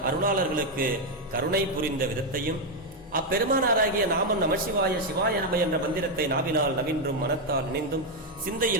அருளாளர்களுக்கு கருணை புரிந்த விதத்தையும் அப்பெருமானாராகிய நாமம் நமசிவாய சிவாய நம என்ற மந்திரத்தை நாவினால் நவின்றும் மனத்தால் நினைந்தும்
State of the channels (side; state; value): both; normal; correlation 0.03